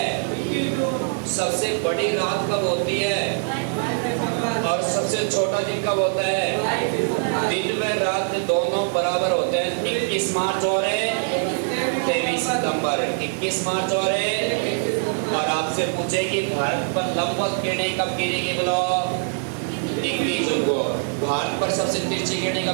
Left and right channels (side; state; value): left; silent; 63 dB below the other